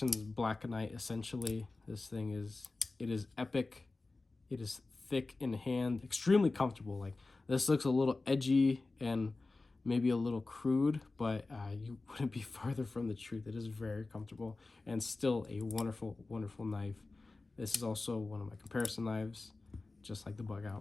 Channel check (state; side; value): quieter; right; 3.4 dB